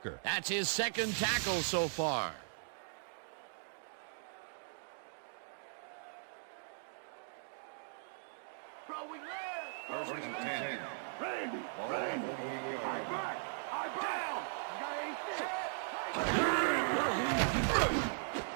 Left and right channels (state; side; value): silent; left; digital silence